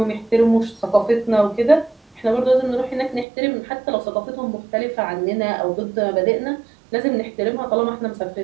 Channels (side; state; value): left; drops out; at 3.2 s